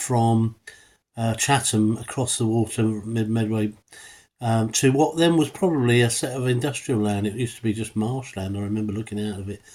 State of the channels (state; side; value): identical; both; correlation 1.00